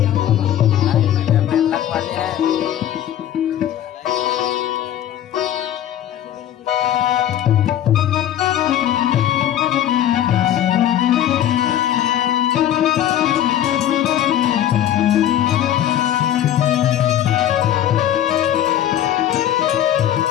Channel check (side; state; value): right; quieter; 11.4 dB